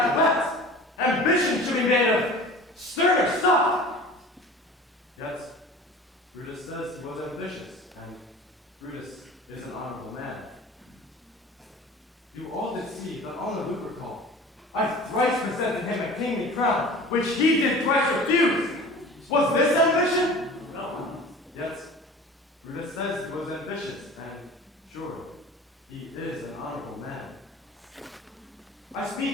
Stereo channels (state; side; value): normal; both; correlation 0.41